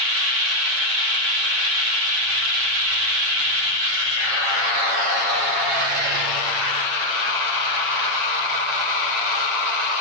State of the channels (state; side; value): late; left; 8.8 ms